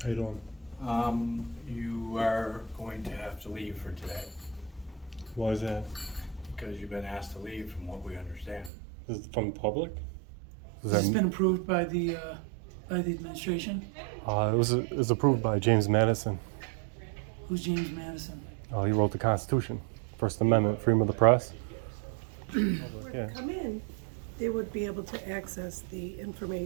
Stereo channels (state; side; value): drops out; left; at 8.7 s